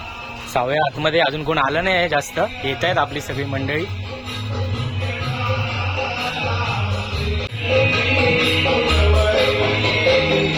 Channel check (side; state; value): both; identical; correlation 1.00